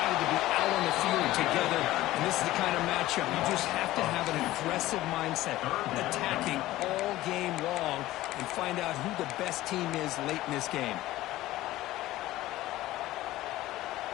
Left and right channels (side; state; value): right; quieter; 16.2 dB